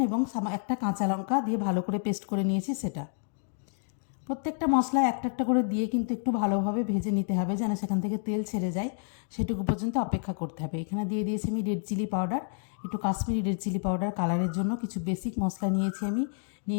এবং একটা কাঁচা লঙ্কা দিয়ে ভালো করে পেস্ট করে নিয়েছি সেটা। প্রত্যেকটা মশলা একটা একটা করে দিয়ে কিন্তু একটু ভালোভাবে ভেজে নিতে হবে, যেন সেখান থেকে তেল ছেড়ে যায়, সেটুকু পর্যন্ত অপেক্ষা করতে হবে। এখানে দিয়ে দিয়েছি আমি রেড চিলি পাউডার, একটু কাশ্মীরি রেড চিলি পাউডার কালারের জন্য। কিছু বেসিক মশলা নিয়েছি আমি,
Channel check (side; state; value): right; silent; 58 dB below the other